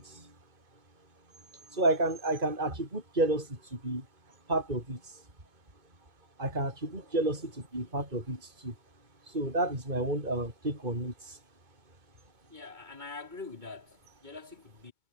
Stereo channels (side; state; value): left; late; 2.2 ms